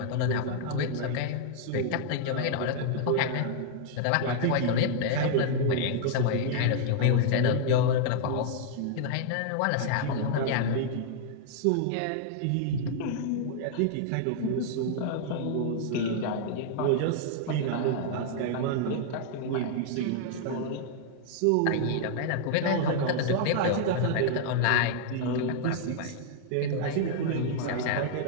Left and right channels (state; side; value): different; both; correlation -0.01